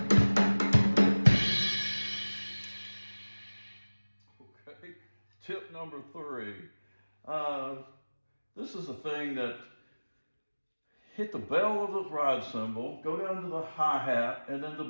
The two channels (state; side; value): inverted; both; correlation -1.00